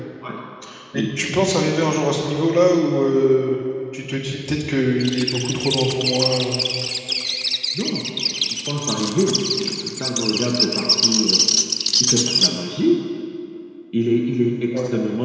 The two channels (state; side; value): identical; both; correlation 1.00